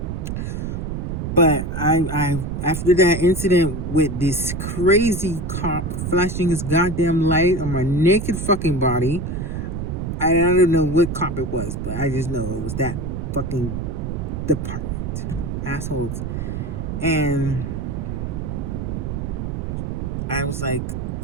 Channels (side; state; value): right; noise; rumble, 4 dB below the sound